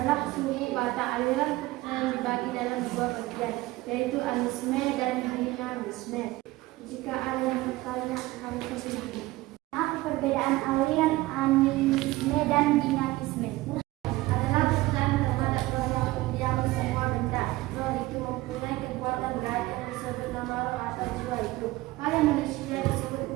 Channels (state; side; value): quieter; left; 19.1 dB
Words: suku Batak. Aliran kepercayaan dibagi dalam dua bagian, yaitu animisme dan dinamisme. Jika ada yang bertanya, kami persilahkan. Apa perbedaan aliran animisme dan dinamisme? Adalah kepercayaan terhadap roh yang mendiami semua benda. Roh itu mempunyai kekuatan gaib yang disebut nama roh atau jiwa itu. Pada manusia disebut